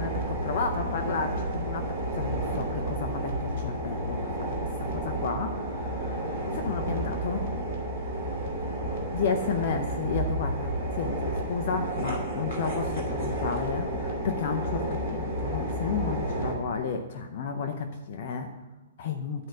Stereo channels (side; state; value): both; inverted; correlation -0.38